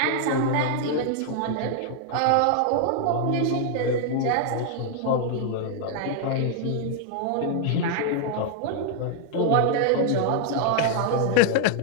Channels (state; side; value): different; both; correlation 0.00